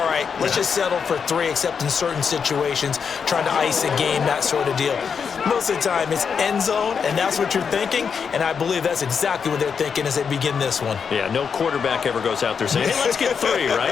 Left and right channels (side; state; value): right; quieter; 6.4 dB